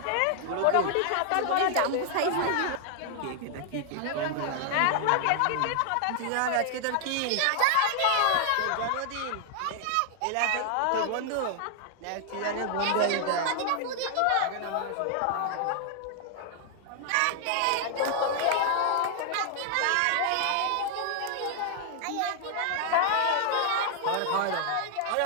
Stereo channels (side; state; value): both; different; correlation 0.00